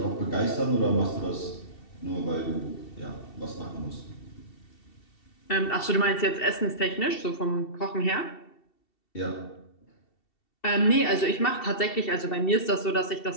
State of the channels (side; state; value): right; late; 2.7 ms